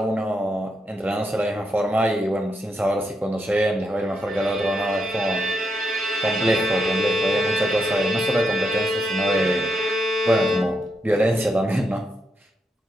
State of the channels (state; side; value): normal; both; correlation 0.82